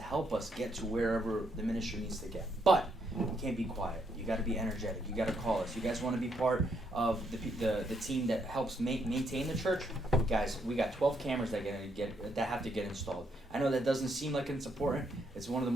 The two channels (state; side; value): normal; both; correlation 0.74